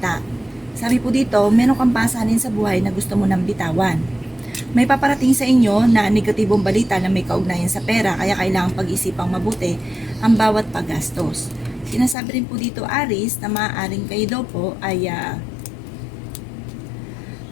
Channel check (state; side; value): drops out; right; at 12.2 s